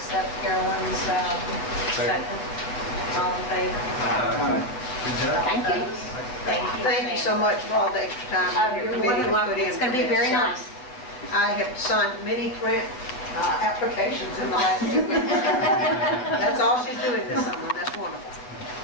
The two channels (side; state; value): right; late; 7.8 ms